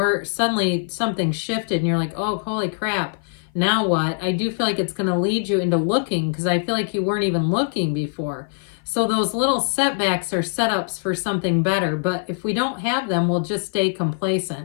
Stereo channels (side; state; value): right; silent; 56 dB below the other